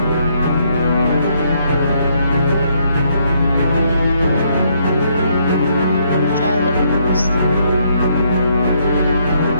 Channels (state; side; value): inverted; both; correlation -0.71